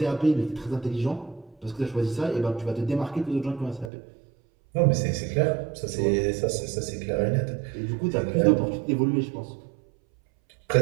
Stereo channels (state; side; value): drops out; left; at 3.9 s